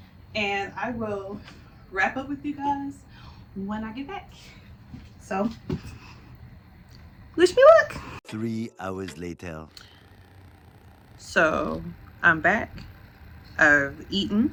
and I will wrap up with you guys when I get back. So wish me luck. 3 hours later. So I'm back. I've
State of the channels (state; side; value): identical; both; correlation 1.00